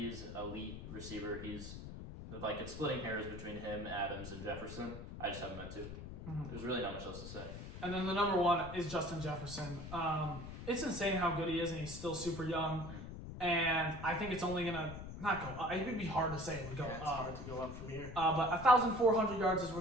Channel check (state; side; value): noise; left; rumble, 10 dB below the sound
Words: elite receiver. He's like, it's splitting hairs between him, Adams, and Jefferson. I just haven't meant to. There's really not much else to say. And then the number 1 is Justin Jefferson. It's insane how good he is, and he's still super young. And I think it's only gonna not go up. It would be hard to say it would go it's up. hard to go up from here. But 1,400 yards his